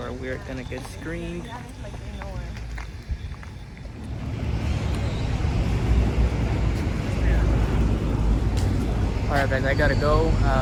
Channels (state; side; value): identical; both; correlation 1.00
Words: we're gonna get screened. Alright guys, I gotta go.